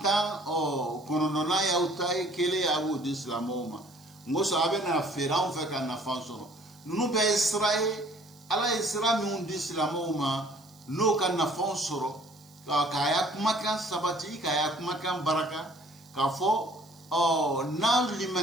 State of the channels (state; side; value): noise; right; hiss, 27 dB below the sound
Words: kɔnɔntɔnnan y'aw ta ye kelen a b'o di silamɛw ma n ko sɔn a bɛ na feere anw fɛ ka nafa sɔrɔ ninnu bɛɛ ye sira ye ala ye sira minnu di silamɛw ma n'o ka nafaw sɔrɔ k'a y'a kumakan sabati k'a y'a kumakan baraka k'a fɔ n'an